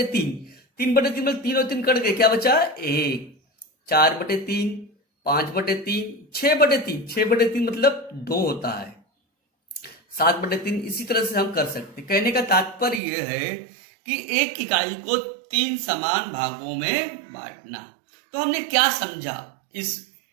3/3 मतलब 3 और 3 कट गए, क्या बचा? 1, 4/3, 5/3, 6/3, 6/3 मतलब 2 होता है, 7/3। इसी तरह से हम कर सकते। कहने का तात्पर्य यह है कि 1 इकाई को 3 समान भागों में बांटना। तो हमने क्या समझा इस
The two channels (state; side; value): drops out; left; at 13.0 s